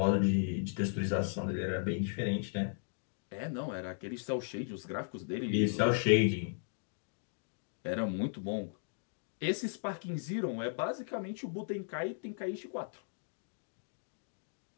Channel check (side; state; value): right; silent; digital silence